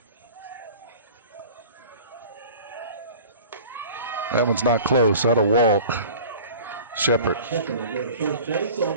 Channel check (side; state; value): both; inverted; correlation -0.42